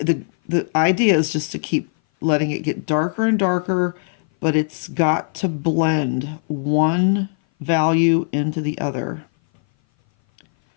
idea is just to keep letting it get darker and darker, but it's got to blend one value into the other.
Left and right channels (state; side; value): silent; right; 58 dB below the other